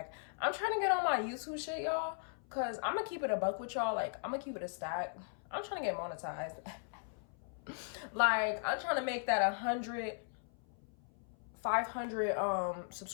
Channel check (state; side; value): silent; right; 53 dB below the other